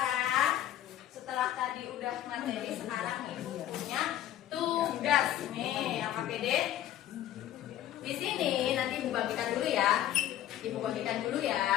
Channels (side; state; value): right; quieter; 12.4 dB